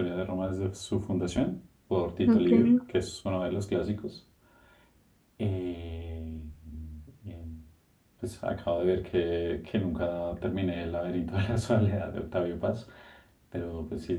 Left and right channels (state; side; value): identical; both; correlation 1.00